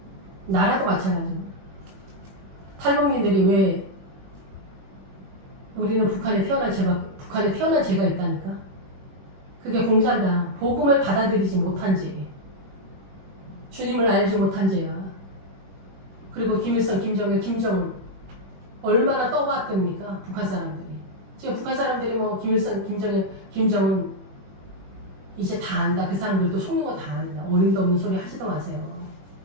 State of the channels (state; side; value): late; left; 21 ms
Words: 나라도 마찬가지입니다. 탈북민들이 왜 우리는 북한에 태어난 죄가 있다니까? 그게 공산당, 복음을 받아들이지 못한 죄. 주님을 알지 못한 죄야. 그리고 김일성, 김정일, 김정은 얼마나 떠봤답니까? 북한 사람들이. 지금 북한 사람들이 뭐 김일성, 김정일, 김정은 이제 다 안다. 그 사람들도 속는 거 다 안다. 어림도 없는 소리 하지도 마세요.